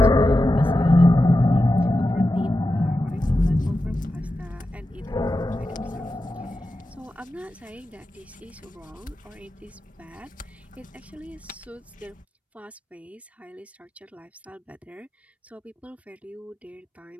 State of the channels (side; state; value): both; normal; correlation 0.91